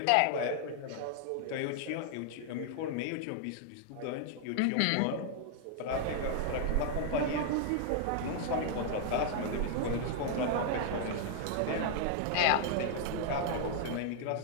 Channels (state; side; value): different; both; correlation -0.01